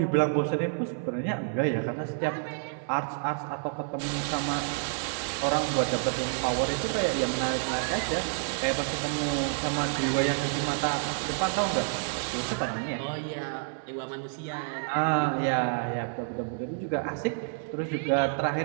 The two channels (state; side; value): silent; left; digital silence